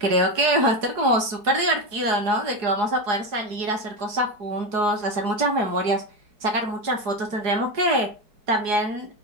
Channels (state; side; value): late; left; 4.8 ms